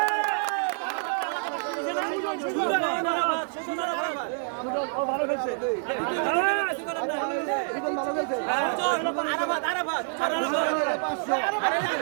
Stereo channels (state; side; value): silent; left; digital silence